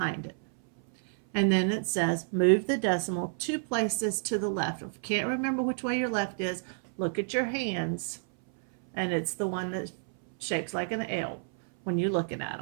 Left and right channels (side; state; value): left; silent; 58 dB below the other